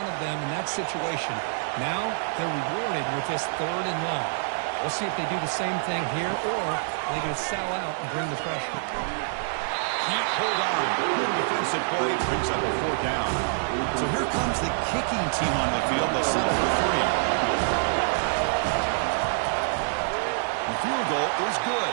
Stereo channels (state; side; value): silent; left; 61 dB below the other